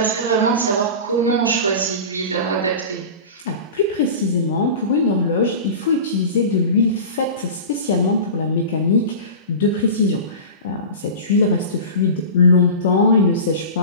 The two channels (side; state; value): both; inverted; correlation -0.32